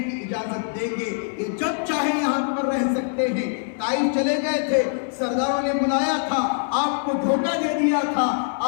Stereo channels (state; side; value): silent; right; 60 dB below the other